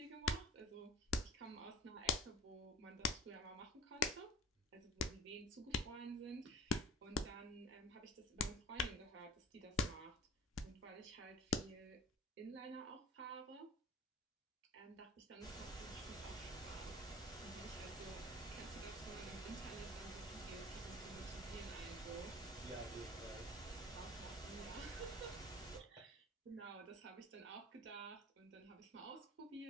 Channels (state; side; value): normal; both; correlation 0.40